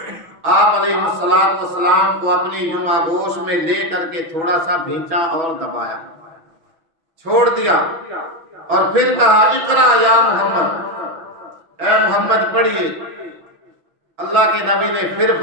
آپ علیہ السلام کو اپنی یوں آغوش میں لے کر کے تھوڑا سا بھینچا اور دبایا، چھوڑ دیا، اور پھر کہا اقرا یا محمد، اے محمد پڑھیے۔ اللہ کے نبی نے پھر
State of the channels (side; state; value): left; late; 6.1 ms